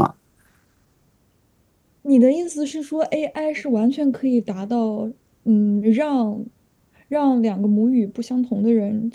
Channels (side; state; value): both; identical; correlation 1.00